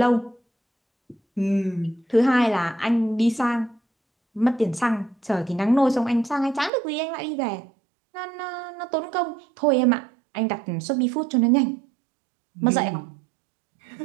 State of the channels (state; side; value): drops out; left; at 6.7 s